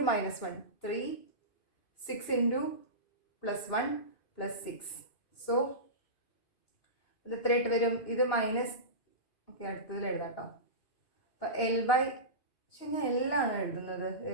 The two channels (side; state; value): right; late; 2.6 ms